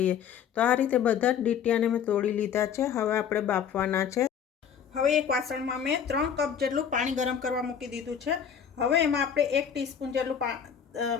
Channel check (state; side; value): quieter; right; 8.0 dB